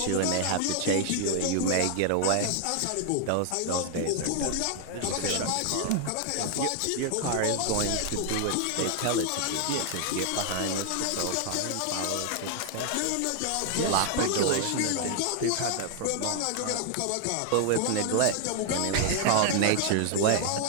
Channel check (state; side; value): different; both; correlation 0.00